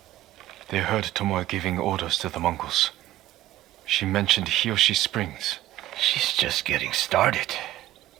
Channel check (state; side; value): quieter; left; 14.9 dB